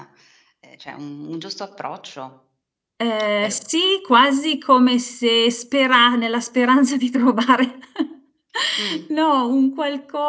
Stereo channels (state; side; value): identical; both; correlation 1.00